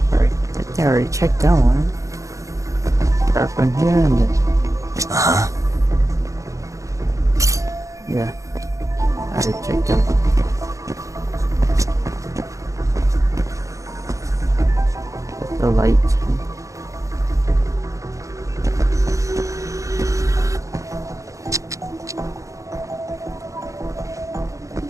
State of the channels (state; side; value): late; left; 0.16 ms